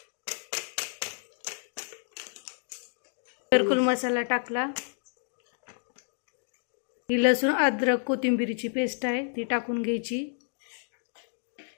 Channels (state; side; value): silent; right; 58 dB below the other